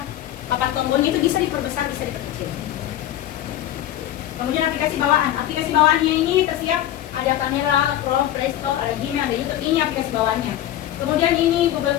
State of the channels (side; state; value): right; quieter; 12.6 dB